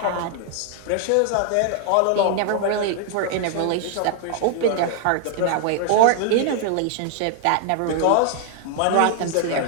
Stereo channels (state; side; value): different; both; correlation 0.00